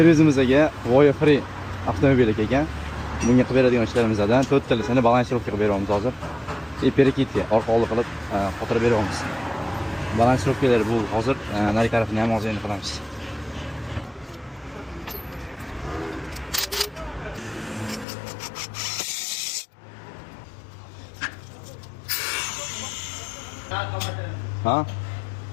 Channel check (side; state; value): right; drops out; at 18.1 s